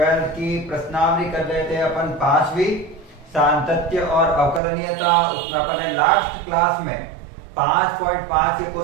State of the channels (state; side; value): drops out; left; at 4.6 s